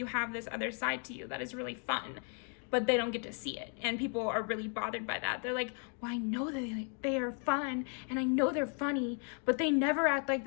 have this other side to you that is really fun, but they don't get to see it. And people are really bothered by that. They're like, well, I know that they are fun and I know they're funny, but they never act like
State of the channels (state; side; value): quieter; right; 38.4 dB